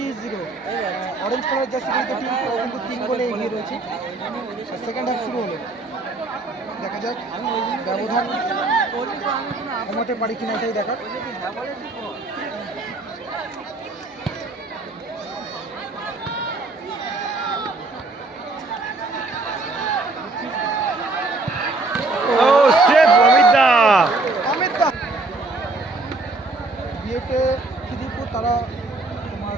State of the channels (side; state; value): left; quieter; 3.2 dB